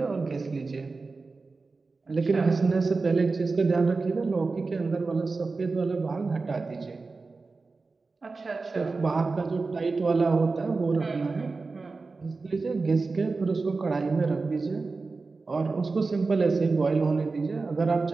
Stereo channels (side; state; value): left; quieter; 4.0 dB